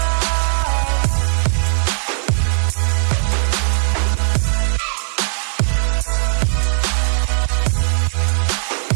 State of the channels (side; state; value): left; silent; digital silence